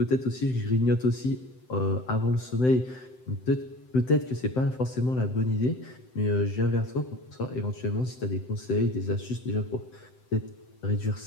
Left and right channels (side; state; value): right; late; 7.8 ms